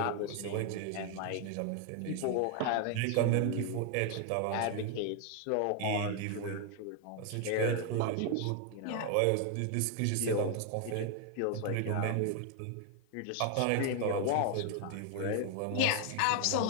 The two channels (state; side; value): different; both; correlation 0.00